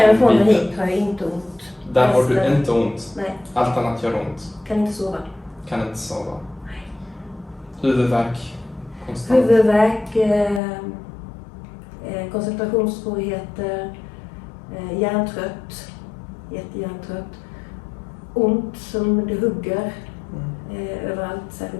och biten. hit har jag inte ont. Där har du Resten- inte ont? Nej, Allt annat gör ont? kan inte sova. Kan inte sova? Huvudvärk? Konstant? Huvudvärk, koncentrationssvårigheter, hjärntrött, jättehjärntrött. Ont som det hugger överallt,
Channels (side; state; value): right; drops out; at 10.6 s